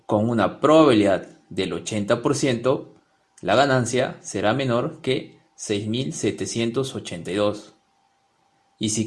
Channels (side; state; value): both; identical; correlation 1.00